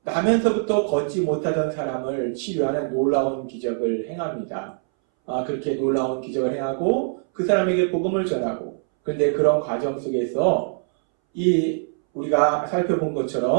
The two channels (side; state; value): left; silent; 62 dB below the other